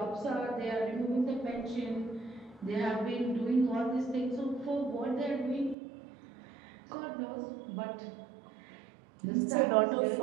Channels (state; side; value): drops out; left; at 5.8 s